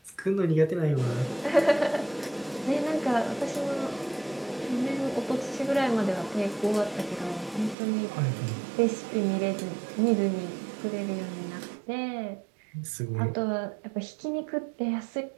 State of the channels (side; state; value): left; drops out; at 7.8 s